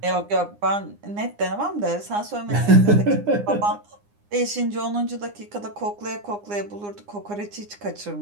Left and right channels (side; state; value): left; late; 9.7 ms